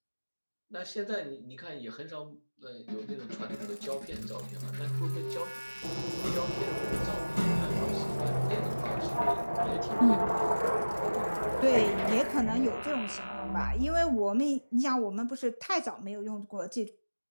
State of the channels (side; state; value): both; inverted; correlation -1.00